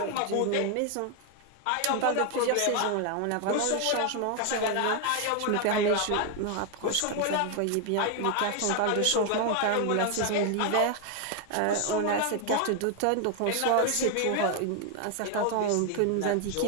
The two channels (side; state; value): both; different; correlation 0.00